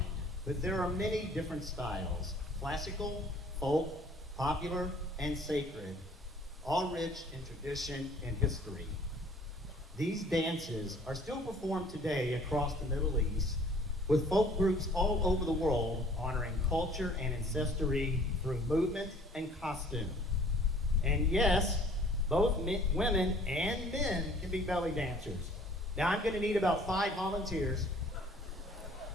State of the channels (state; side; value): normal; both; correlation 0.54